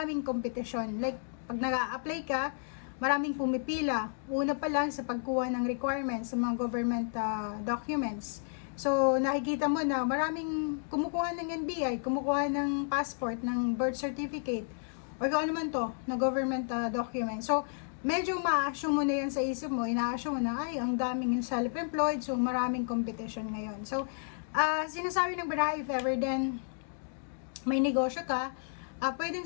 competition. Like, pag nag-a-apply ka, maraming pumipila. Una pa lang sa pagkuha ng requirements sa mga government documents. So, nakikita mo na maraming kumukuha ng NBI, kumukuha ng passport, ng birth certificate, or kung ano man to, na government document. So, medyo ma-assume mo na yan sa isip mo, ina-assume mo na, ay, ang daming self-employed, so maraming competition ngayon. So, sinasabi ng baraha, if ever then may negosyo ka,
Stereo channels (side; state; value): right; silent; digital silence